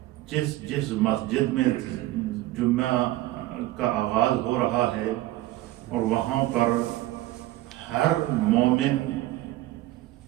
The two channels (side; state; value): left; quieter; 16.7 dB